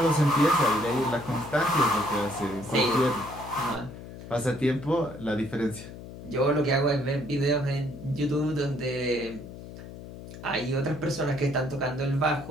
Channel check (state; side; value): noise; left; hum, 13 dB below the sound